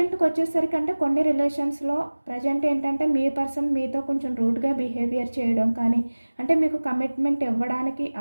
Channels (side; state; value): both; inverted; correlation -1.00